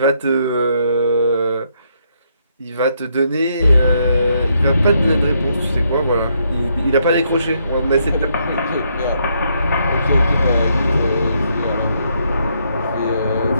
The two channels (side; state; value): both; inverted; correlation -0.74